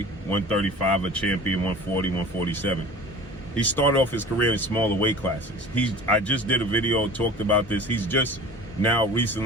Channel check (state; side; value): normal; both; correlation 0.40